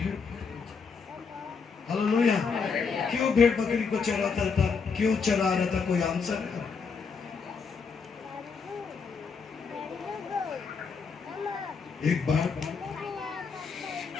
हालेलुया। क्यों भेड़ बकरी को चराता था? क्यों चरा रहा था? कोई आंसर है? एक बार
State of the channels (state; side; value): quieter; right; 5.4 dB